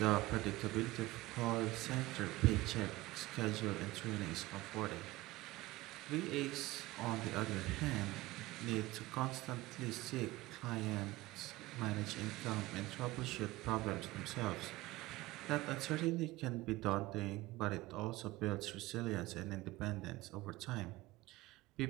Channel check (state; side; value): quieter; left; 19.2 dB